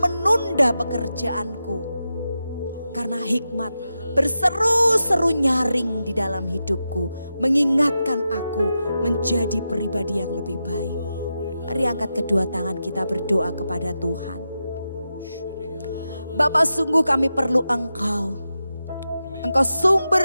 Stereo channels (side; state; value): both; inverted; correlation -0.90